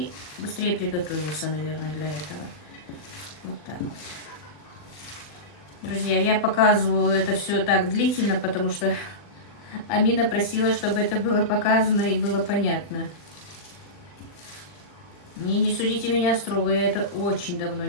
быстрее приготовился, наверное, для этого. Вот так вот. Друзья, я показываю это все так длительно, потому что Амина просила, чтобы это было показано и было понятно. Не судите меня строго, я это очень давно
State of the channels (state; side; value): late; right; 40 ms